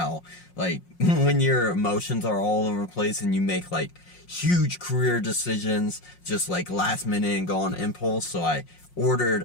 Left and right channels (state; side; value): late; right; 5.6 ms